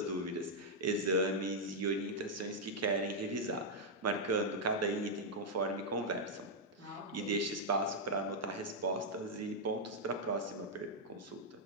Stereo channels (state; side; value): normal; both; correlation -0.04